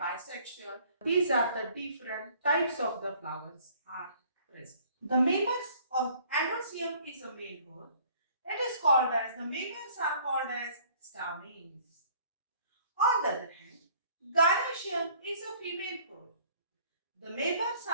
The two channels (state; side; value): inverted; both; correlation -0.56